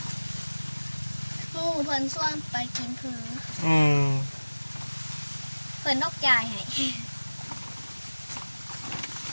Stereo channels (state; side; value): inverted; both; correlation -1.00